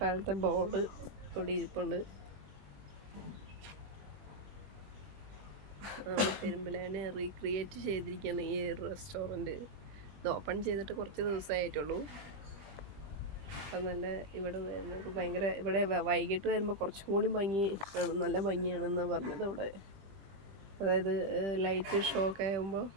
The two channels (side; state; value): left; late; 20 ms